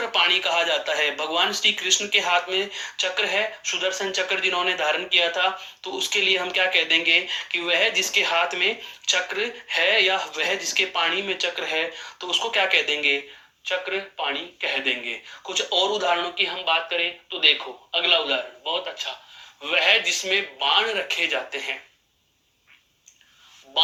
पाणी कहा जाता है। भगवान श्री कृष्ण के हाथ में चक्र है, सुदर्शन चक्र जिन्होंने धारण किया था, तो उसके लिए हम क्या कह देंगे कि वह जिसके हाथ में चक्र है या वह जिसके पाणी में चक्र है, तो उसको क्या कह देंगे? चक्र पाणी कह देंगे। कुछ और उदाहरणों की हम बात करें तो देखो, अगला उदाहरण बहुत अच्छा। वह जिसमें बाण रखे जाते हैं,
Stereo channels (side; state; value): both; identical; correlation 1.00